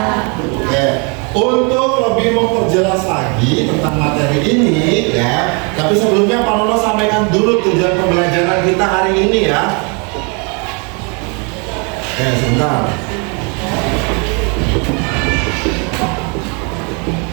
Oke. Untuk lebih memperjelas lagi tentang materi ini ya, tapi sebelumnya Pak Nono sampaikan dulu tujuan pembelajaran kita hari ini ya. Oke, sebentar.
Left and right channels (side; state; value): left; quieter; 33.7 dB